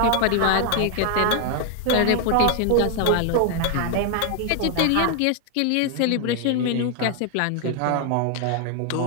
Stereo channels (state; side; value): different; both; correlation 0.00